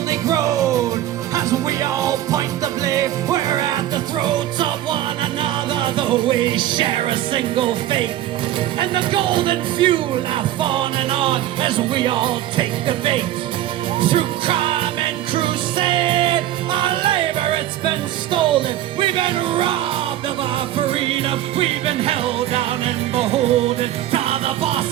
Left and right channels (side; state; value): left; quieter; 13.2 dB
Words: grown. As we all point the blame, we're at the throats of one another, though we share a single fate. And the golden few laugh on and on as we all take the bait. Through crime and crusade, our labor it's been stolen. We've been robbed of our freedom. We've been held down and beholden to the